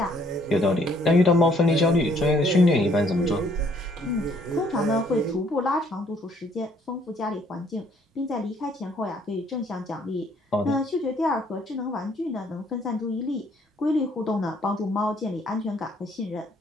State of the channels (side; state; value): both; normal; correlation 0.64